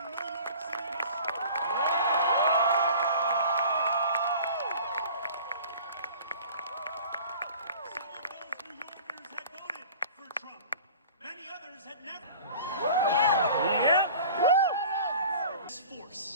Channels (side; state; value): both; inverted; correlation -0.43